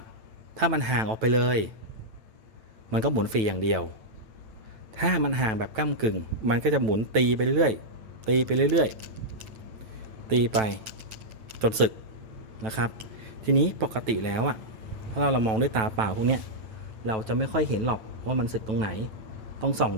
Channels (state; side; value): late; left; 9.1 ms